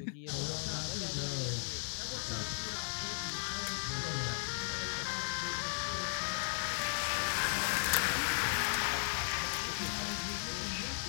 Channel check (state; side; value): silent; right; 54 dB below the other